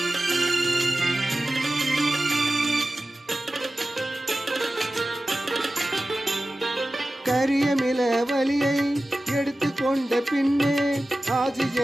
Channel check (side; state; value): both; normal; correlation 0.95